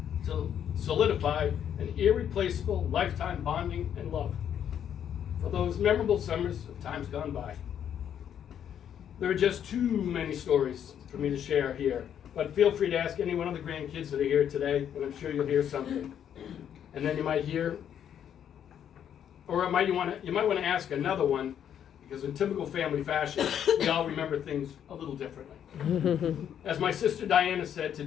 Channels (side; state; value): right; quieter; 9.3 dB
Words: to solidify an irreplaceable lifetime bonding and love for those memorable summers of times gone by. There are just too many stories for me to share here, but feel free to ask any one of the grandkids that are here today, and I'm sure you'll hear something. And then you might hear, or you might want to ask another one, because in typical family fashion, we all remember things a little differently. As my sister Diana said to